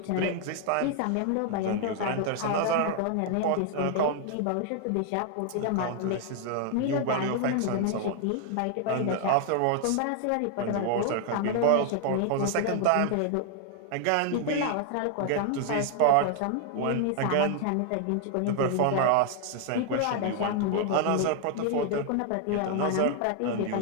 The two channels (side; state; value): both; different; correlation 0.00